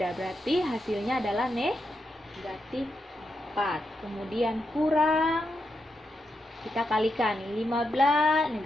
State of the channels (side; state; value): both; normal; correlation 0.84